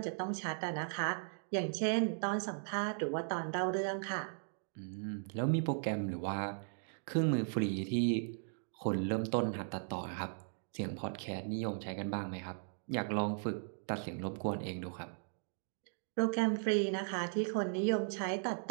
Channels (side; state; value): left; silent; digital silence